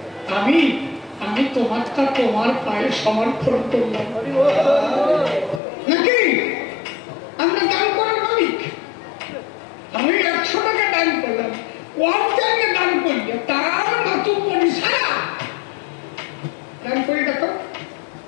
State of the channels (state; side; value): drops out; right; at 5.6 s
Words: আমি তোমারটা তোমার পায়ে সমর্পণ করলাম নাকি? আমরা দান করার মালিক। আমি 100 টাকা দান করলাম, ওয়ান টাইমে দান করলে তার মাতুর পরি সারা দান করে দেখো।